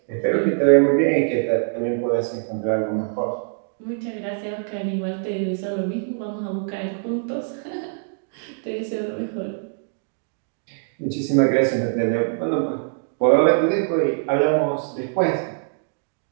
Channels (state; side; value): silent; left; digital silence